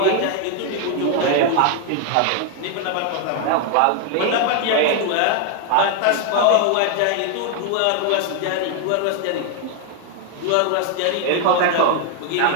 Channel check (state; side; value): different; both; correlation 0.00